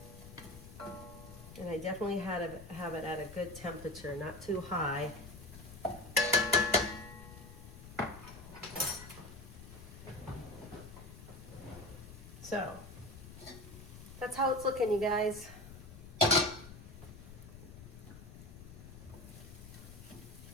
And I definitely have it at a good temperature, not too high. So, that's how it's looking, you guys.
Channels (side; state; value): left; noise; rumble, 14 dB below the sound